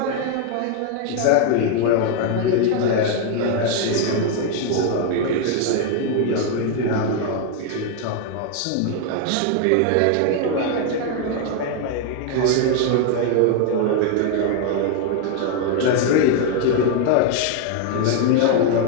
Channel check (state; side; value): different; both; correlation 0.01